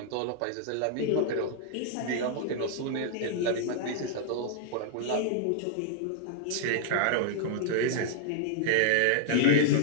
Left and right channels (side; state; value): both; different; correlation -0.01